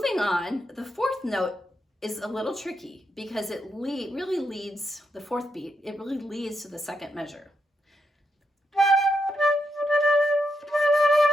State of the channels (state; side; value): normal; both; correlation 0.82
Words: on, the 4th note is a little tricky because it really leads, the 4th beat, it really leads to the 2nd measure.